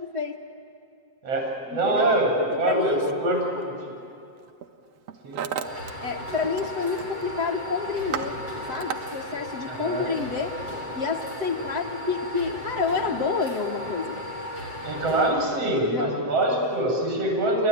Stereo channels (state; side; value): late; left; 7.8 ms